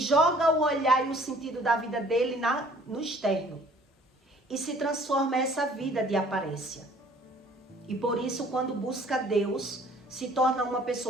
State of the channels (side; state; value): both; normal; correlation 0.55